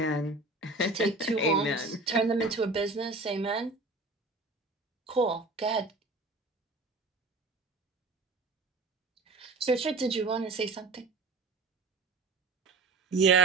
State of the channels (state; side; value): quieter; left; 3.4 dB